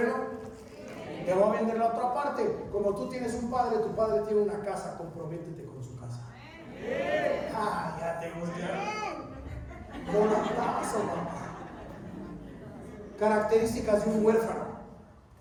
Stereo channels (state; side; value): identical; both; correlation 1.00